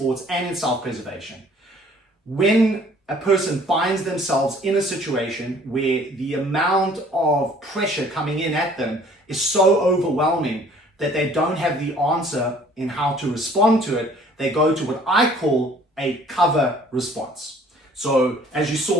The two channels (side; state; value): both; normal; correlation 0.55